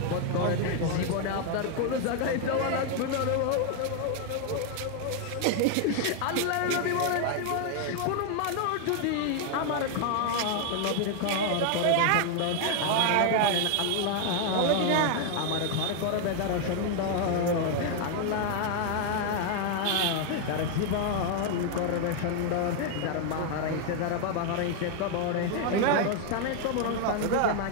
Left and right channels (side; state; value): both; different; correlation 0.00